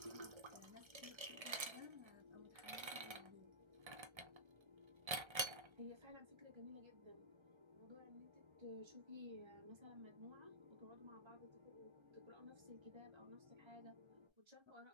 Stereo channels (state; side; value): late; left; 1.3 ms